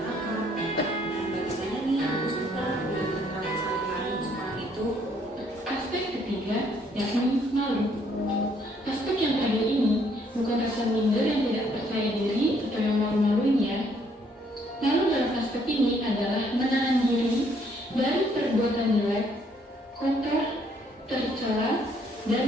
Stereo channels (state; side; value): normal; both; correlation 0.67